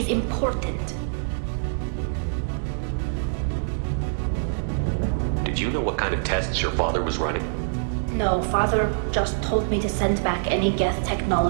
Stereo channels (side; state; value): left; silent; digital silence